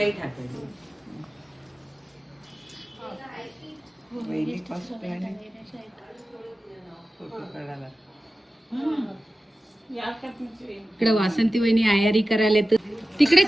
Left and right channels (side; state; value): both; normal; correlation 0.95